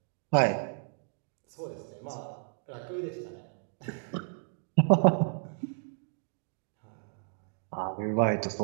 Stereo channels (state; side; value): silent; left; digital silence